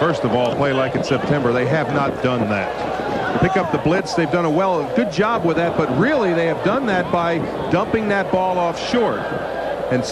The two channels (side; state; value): both; identical; correlation 1.00